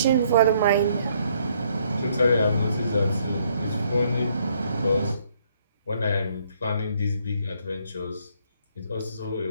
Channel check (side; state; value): both; inverted; correlation -0.67